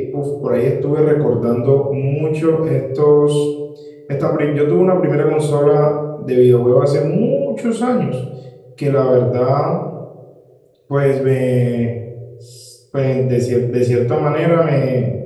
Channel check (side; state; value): both; identical; correlation 1.00